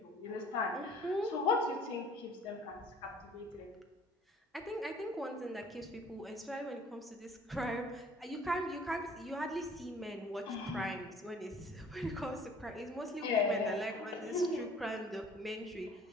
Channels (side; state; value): both; normal; correlation 0.53